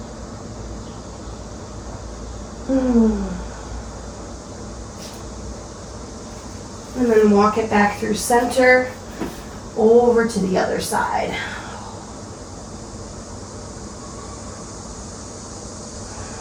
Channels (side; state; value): both; identical; correlation 1.00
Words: And then walk it back through center, over to the other side.